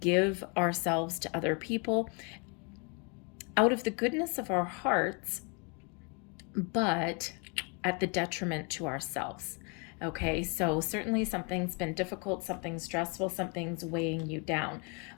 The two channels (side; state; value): right; quieter; 34.2 dB